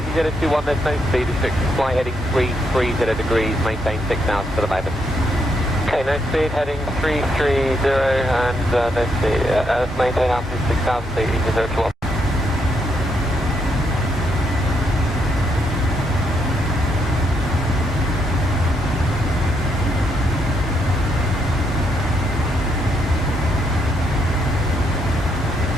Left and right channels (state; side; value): normal; both; correlation 0.77